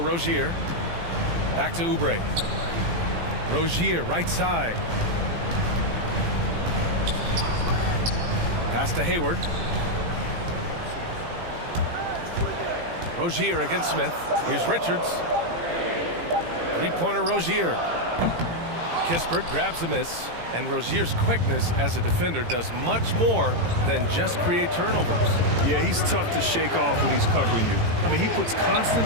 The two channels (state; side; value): late; left; 18 ms